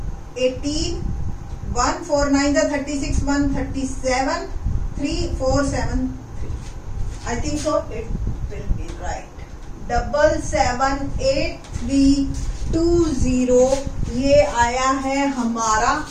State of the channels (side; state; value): both; identical; correlation 1.00